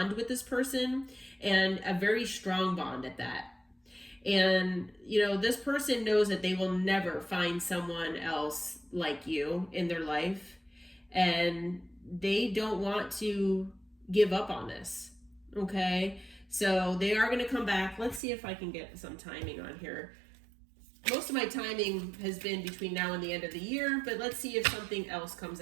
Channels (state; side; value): drops out; left; at 18.2 s